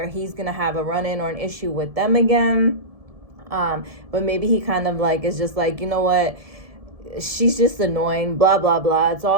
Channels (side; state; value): left; late; 1.7 ms